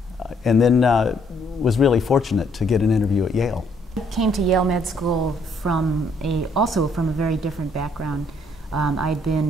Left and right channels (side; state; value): both; normal; correlation 0.68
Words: And then was really fortunate to get an interview at Yale. I came to Yale Med School also from a very different background. I'd